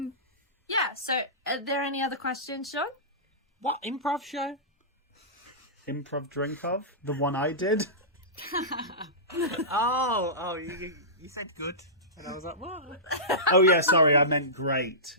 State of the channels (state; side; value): normal; both; correlation -0.20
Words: Yeah, so are there any other questions, Sean? What improv show? Improv Drink of? The one I did? You said good. And I was like, what? Oh, yeah, sorry, I meant great